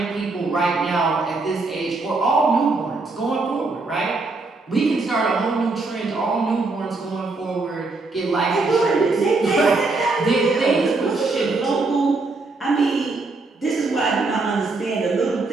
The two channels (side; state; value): left; quieter; 3.6 dB